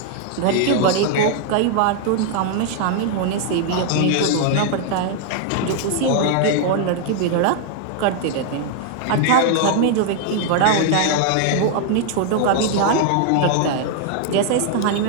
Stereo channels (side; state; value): both; different; correlation 0.00